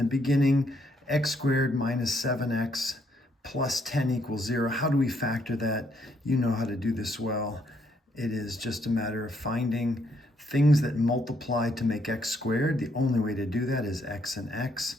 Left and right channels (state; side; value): normal; both; correlation 0.72